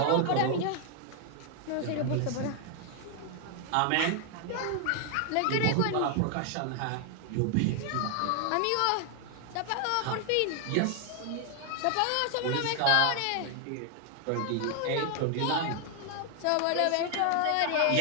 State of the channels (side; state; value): both; different; correlation 0.00